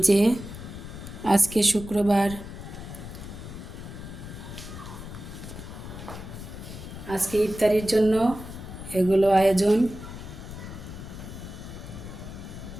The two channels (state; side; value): noise; left; rumble, 11 dB below the sound